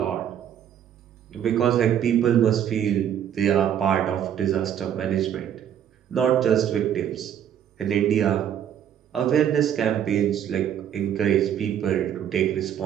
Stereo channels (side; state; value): left; quieter; 9.6 dB